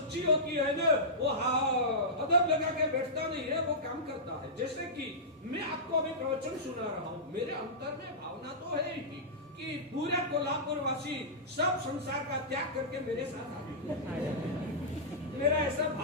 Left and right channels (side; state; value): both; normal; correlation -0.16